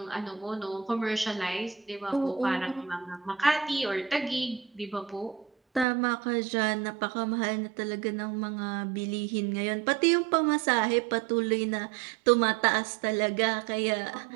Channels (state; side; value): drops out; left; at 5.9 s